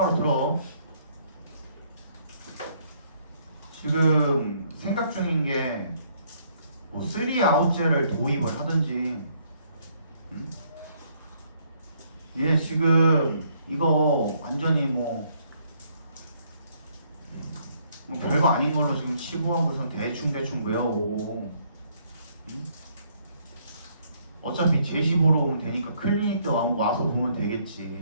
들어. 지금 생각 중인 게 뭐 3아웃제를 도입을 하든지 얘 지금 이거 완전히 뭐 별거 아닌 걸로 지금 치부하고서 대충 외워오고 어차피 제시 보러 오면 되니까 클리닉 때 와서 보면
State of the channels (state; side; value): inverted; both; correlation -0.68